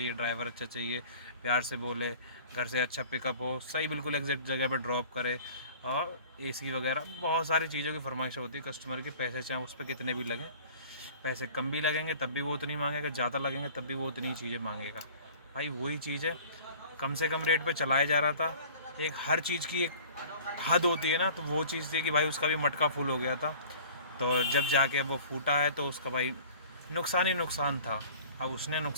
ड्राइवर अच्छा चाहिए, प्यार से बोले, घर से अच्छा पिकअप हो, सही बिल्कुल एग्जैक्ट जगह पे ड्रॉप करे, और एसी वगैरह बहुत सारी चीज़ों की फरमाइशें होती है कस्टमर की। पैसे चाहे उस पर कितने भी लगें, पैसे कम भी लगेंगे तब भी वो उतनी मांगेगा, ज़्यादा लगेंगे तब भी वो उतनी चीज़ें मांगेगा। भाई वही चीज़ है, कम से कम रेट पे चलाया जा रहा था। एक हर चीज़ की एक हद होती है ना, तो वो चीज़ थी कि भाई उसका भी मटका फुल हो गया था। तो जब जाके वो फूटा है तो उसका भाई नुकसान ही नुकसान था। अब उसने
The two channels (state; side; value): inverted; both; correlation -0.45